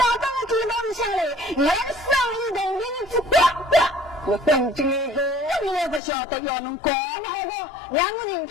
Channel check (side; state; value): right; drops out; at 6.0 s